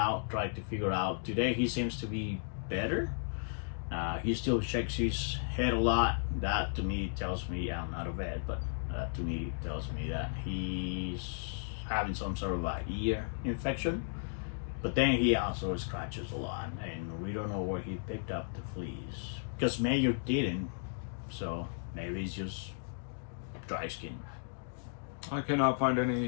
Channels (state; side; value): silent; right; digital silence